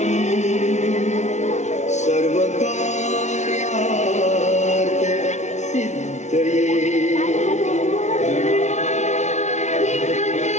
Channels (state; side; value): late; right; 0.33 ms